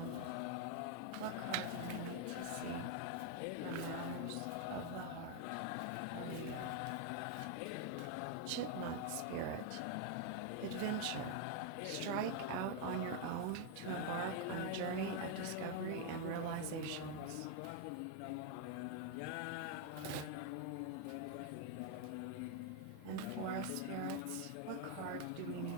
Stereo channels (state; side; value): different; both; correlation 0.01